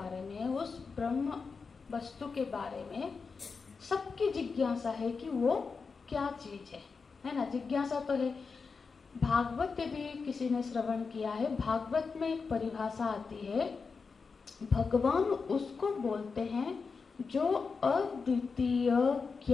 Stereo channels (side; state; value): right; quieter; 4.9 dB